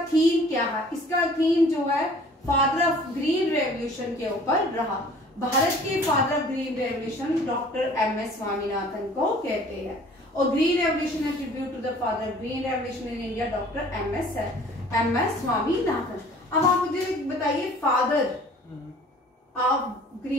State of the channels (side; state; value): both; normal; correlation 0.50